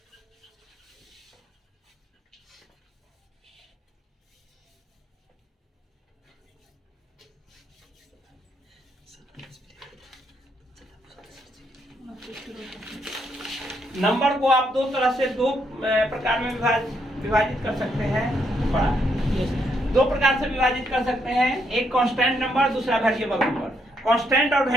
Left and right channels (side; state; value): both; normal; correlation 0.76